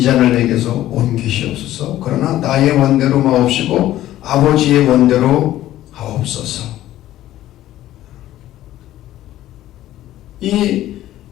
잔을 내게서 옮기시옵소서. 그러나 나의 원대로 마옵시고 아버지의 원대로 하옵소서. 이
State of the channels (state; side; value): quieter; right; 13.9 dB